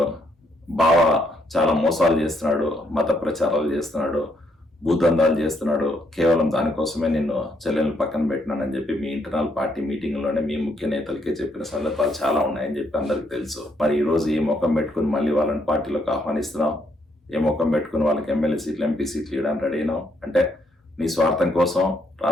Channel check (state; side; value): normal; both; correlation 0.73